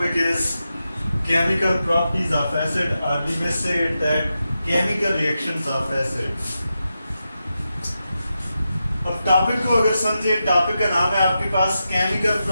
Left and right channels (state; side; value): inverted; both; correlation -0.89